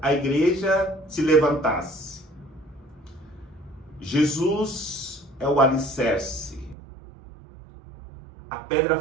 a igreja, se levantasse. Jesus é o alicerce, a pedra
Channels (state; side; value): drops out; left; at 6.8 s